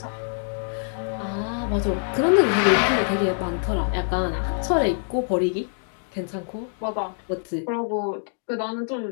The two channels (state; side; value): silent; right; 62 dB below the other